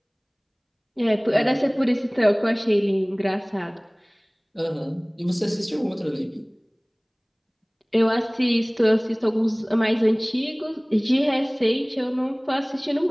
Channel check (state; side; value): identical; both; correlation 1.00